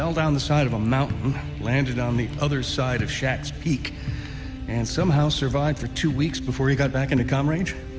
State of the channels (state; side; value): identical; both; correlation 1.00